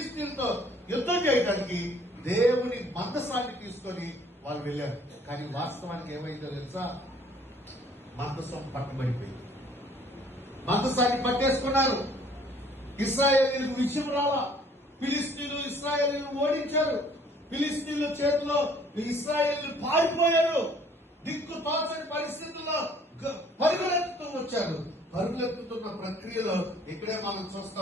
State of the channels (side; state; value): both; normal; correlation 0.57